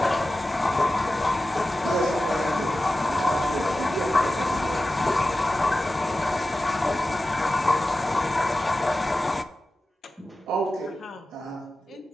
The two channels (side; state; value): both; normal; correlation 0.94